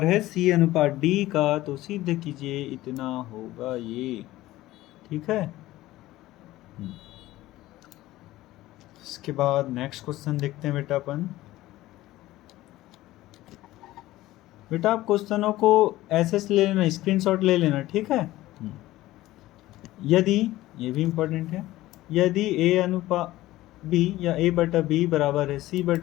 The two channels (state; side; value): quieter; right; 16.5 dB